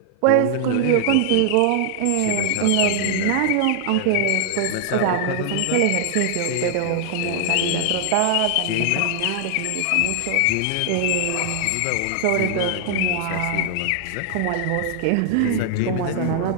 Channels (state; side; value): different; both; correlation 0.00